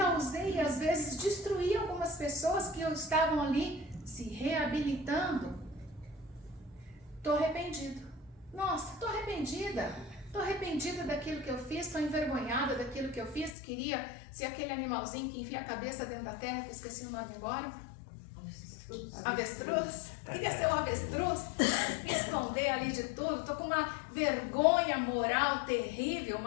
às vezes, destruí algumas pessoas que estavam ali se reabilitando. Estou arrependido. Nossa, estou arrependida. Estou arrependida daquilo que eu fiz, estou envergonhada daquilo que eu fiz. Queria ser aquele animalzinho que enfia a cabeça dentro da terra, que eu esqueci o nome agora. Avestruz? Queria ser um avestruz, me esconder ali de tudo. Estou com uma vergonha moral terrível,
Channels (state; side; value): drops out; right; at 13.6 s